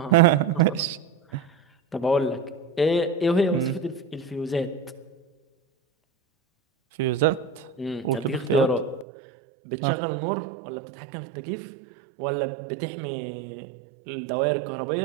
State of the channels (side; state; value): left; drops out; at 9.1 s